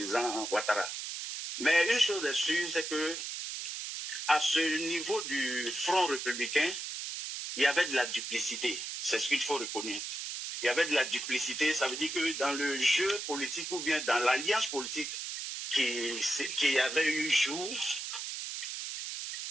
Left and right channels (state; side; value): noise; right; hiss, 5 dB below the sound